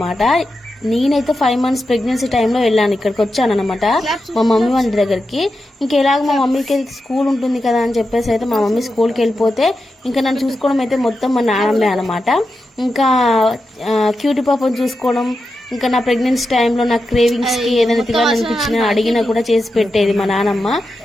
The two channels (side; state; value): both; normal; correlation 0.89